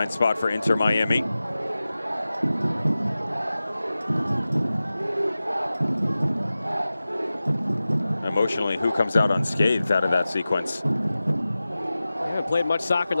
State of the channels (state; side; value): inverted; both; correlation -0.95